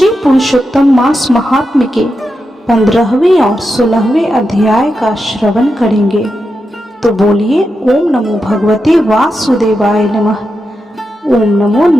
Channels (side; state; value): both; normal; correlation 0.88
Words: पुरुषोत्तम मास महात्म्य के 15वें और 16वें अध्याय का श्रवण करेंगे। तो बोलिए ओम नमो भगवते वासुदेवाय नमः। ओम नमो